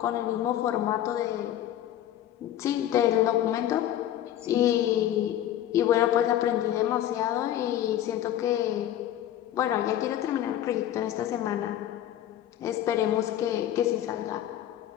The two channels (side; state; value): right; quieter; 12.0 dB